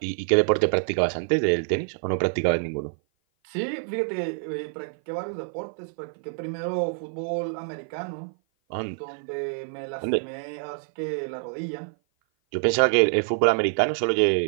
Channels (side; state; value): left; silent; 56 dB below the other